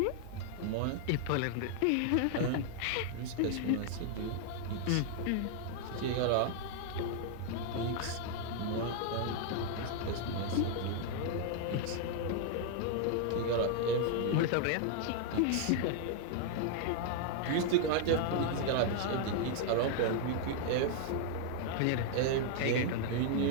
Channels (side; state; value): both; different; correlation 0.00